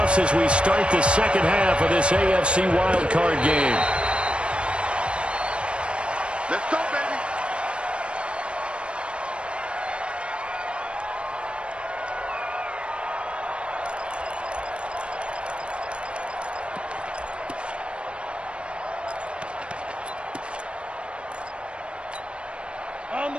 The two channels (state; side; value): late; left; 0.058 ms